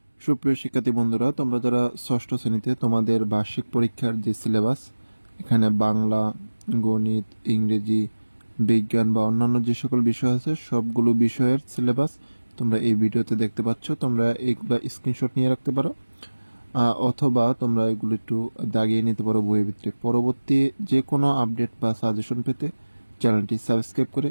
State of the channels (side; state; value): both; inverted; correlation -1.00